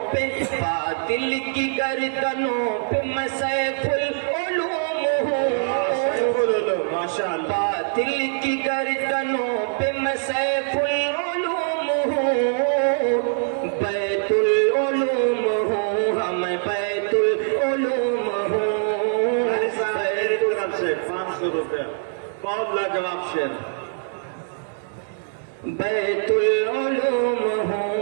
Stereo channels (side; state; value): left; silent; 63 dB below the other